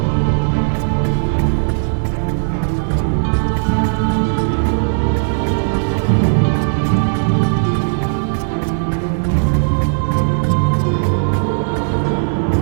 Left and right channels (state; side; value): silent; left; digital silence